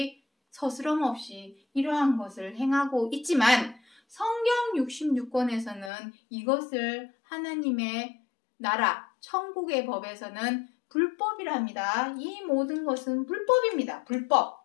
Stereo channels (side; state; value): right; drops out; at 5.9 s